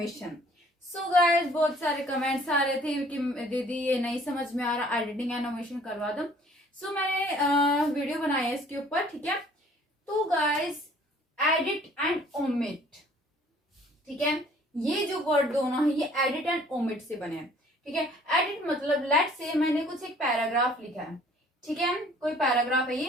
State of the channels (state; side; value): normal; both; correlation 0.55